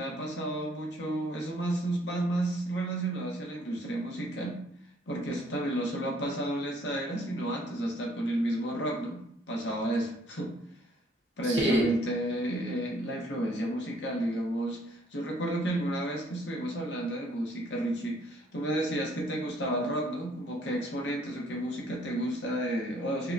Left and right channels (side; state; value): both; normal; correlation 0.63